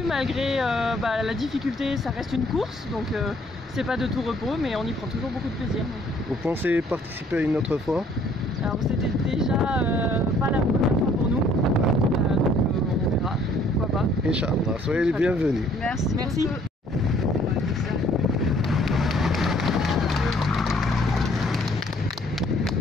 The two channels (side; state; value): both; normal; correlation 0.61